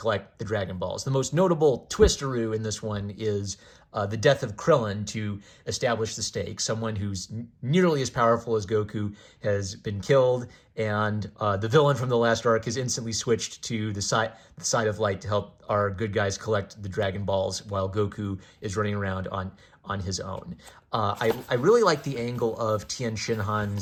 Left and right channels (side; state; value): both; identical; correlation 1.00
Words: the Dragon Balls. The most notable twisteroo in this one is the death of Krillin to establish the stakes. Someone who's nearly as powerful as Goku has been killed, and the villain from the last arc has instantly switched to the side of light to help our good guys collect the Dragon Balls while Goku is running around on his own. I really like the angle of Tien